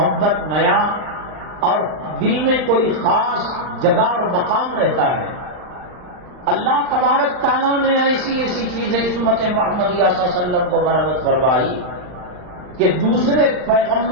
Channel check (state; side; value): late; left; 39 ms